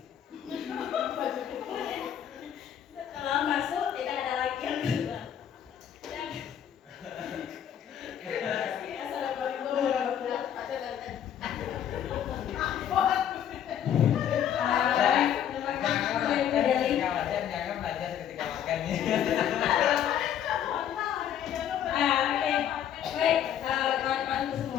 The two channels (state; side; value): quieter; right; 9.7 dB